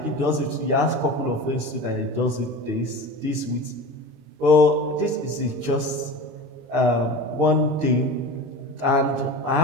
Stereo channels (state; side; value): late; left; 22 ms